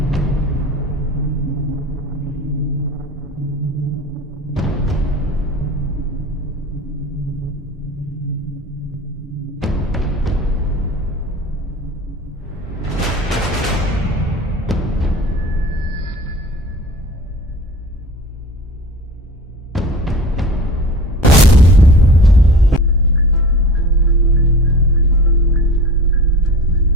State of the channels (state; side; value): normal; both; correlation 0.37